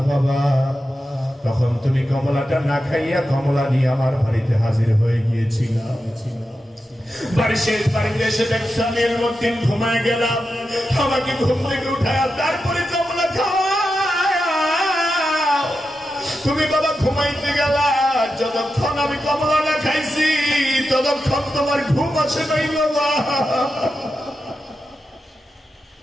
বাবা। তখন তুমি কমলাটা না খাইয়া কমলা নিয়ে আমার বাড়িতে হাজির হয়ে গিয়েছিল। বাড়িতে এসে দেখছি আমি ইলমুদ্দিন ঘুমায় গেলাম। আমাকে ঘুম থেকে উঠায় তারপরে কমলা খাওয়া। তুমি বাবা ঘুমাইতে গেলা, যতক্ষণ আমি কমলা না খাইছি ততক্ষণ তোমার ঘুম আসে নাই বাবা।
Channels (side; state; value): both; normal; correlation 0.90